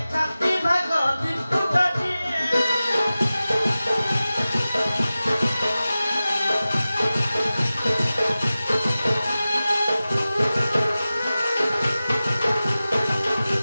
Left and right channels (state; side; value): inverted; both; correlation -0.96